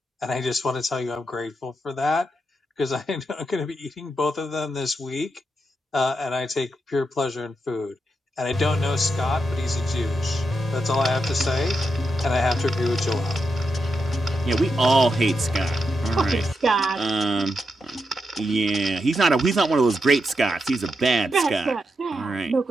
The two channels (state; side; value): normal; both; correlation 0.85